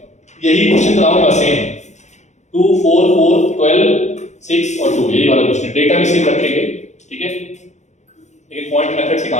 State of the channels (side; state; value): right; late; 0.34 ms